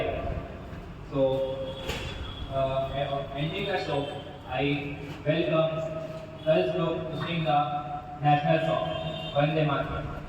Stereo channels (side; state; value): both; identical; correlation 1.00